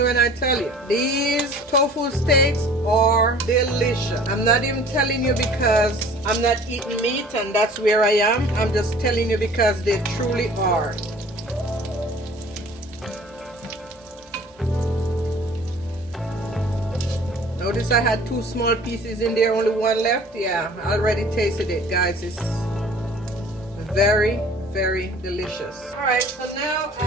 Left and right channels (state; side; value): normal; both; correlation 0.48